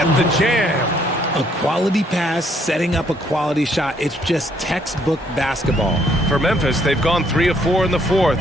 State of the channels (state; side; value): normal; both; correlation 0.67